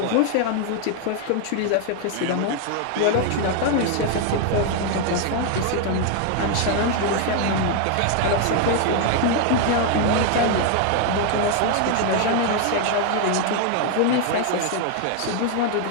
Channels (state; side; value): different; both; correlation 0.00